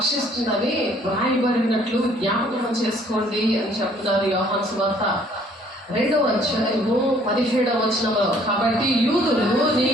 వ్రాయబడినట్లు జ్ఞాపకం చేసుకోండి అని చెప్తున్నారు యోహాను సువార్త 2వ అధ్యాయము 17వ వచనంలో. కాబట్టి యూదులు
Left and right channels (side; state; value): both; normal; correlation 0.60